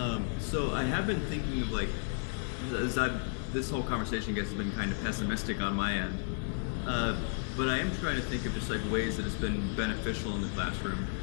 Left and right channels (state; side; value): silent; right; 56 dB below the other